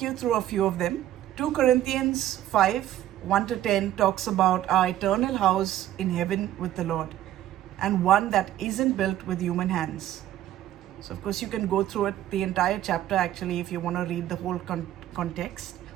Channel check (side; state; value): left; quieter; 12.8 dB